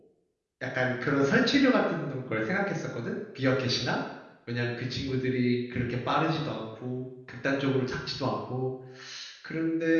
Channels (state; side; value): identical; both; correlation 1.00